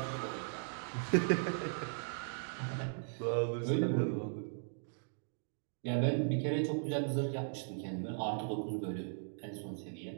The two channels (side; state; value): left; silent; digital silence